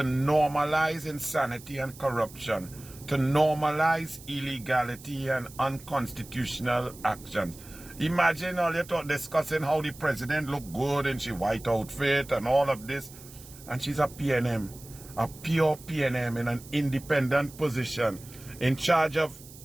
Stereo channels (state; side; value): noise; right; hiss, 19 dB below the sound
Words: insanity and corruption, to normalize illegality and unconstitutional actions. Imagine all you talk discussing how the president look good in she white outfit and all of this, and she's a PNM, a pure PNM in an independent position, in charge of